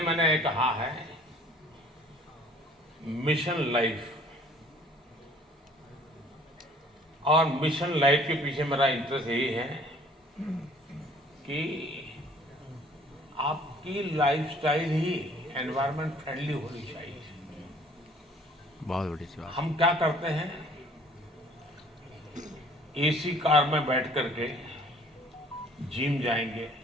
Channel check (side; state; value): both; normal; correlation 0.55